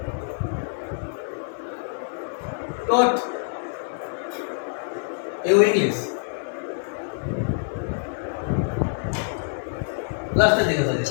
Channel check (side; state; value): right; silent; 59 dB below the other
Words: taught you English. Last दिखा था